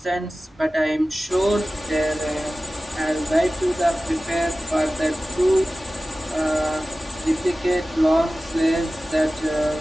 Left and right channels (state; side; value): normal; both; correlation 0.96